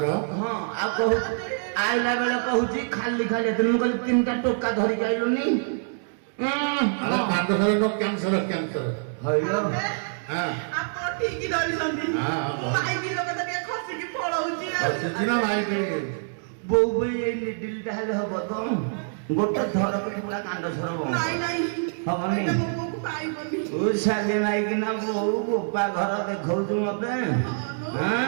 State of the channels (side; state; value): left; silent; digital silence